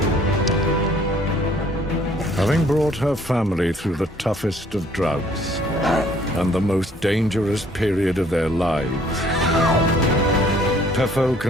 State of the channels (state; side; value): normal; both; correlation 0.60